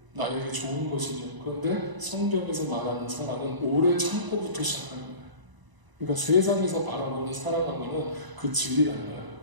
나에게 좋은 것이죠. 그런데 성경에서 말하는 사랑은 오래 참고부터 시작하는 거예요. 그러니까 세상에서 바라보는 사랑하고는 그 질이 달라요.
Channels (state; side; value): late; left; 1.0 ms